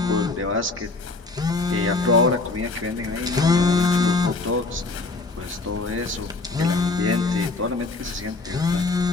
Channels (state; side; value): quieter; right; 3.5 dB